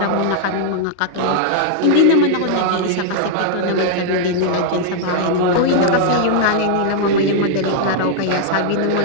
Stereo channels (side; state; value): both; different; correlation -0.01